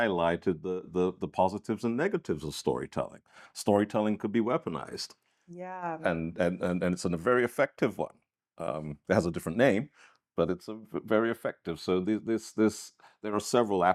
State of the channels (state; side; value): identical; both; correlation 1.00